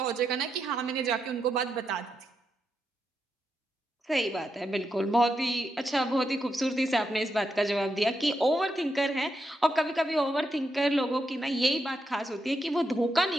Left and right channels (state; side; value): normal; both; correlation 0.83